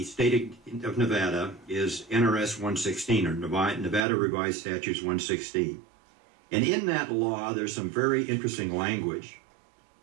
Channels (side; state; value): left; drops out; at 4.0 s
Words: state of Nevada is NRS 116, or Nevada Revised Statutes 116. And in that law, there's some very interesting language.